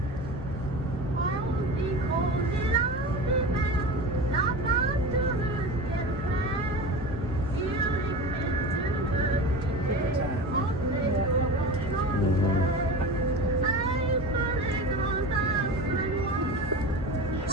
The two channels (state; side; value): normal; both; correlation 0.30